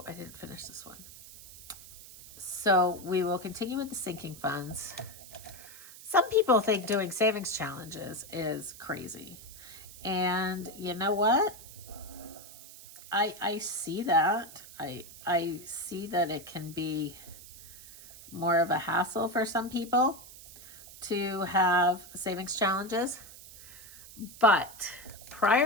I didn't finish this one. So we will continue with the sinking funds. Some people think doing savings challenges is crazy. And you know what? I see that. I see that it can be more of a hassle for some people to have savings challenges. But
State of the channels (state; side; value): noise; right; hiss, 17 dB below the sound